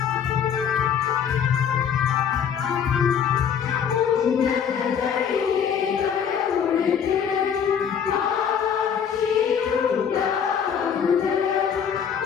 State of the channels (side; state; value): right; quieter; 7.8 dB